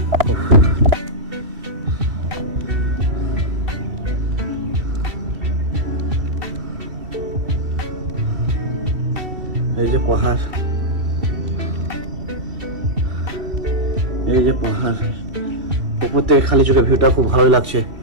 এই যে পাহাড়, এই যে পাহাড়, উপর থেকে খালি চোখে ভিউটা খুব ভালোই লাগছে।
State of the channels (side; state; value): left; late; 2.7 ms